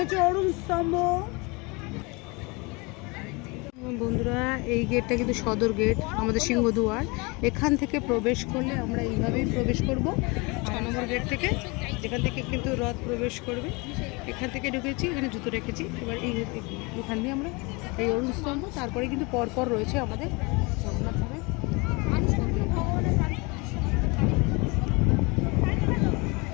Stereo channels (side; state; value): right; quieter; 27.6 dB